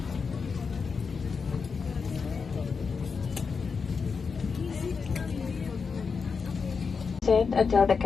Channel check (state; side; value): quieter; right; 5.3 dB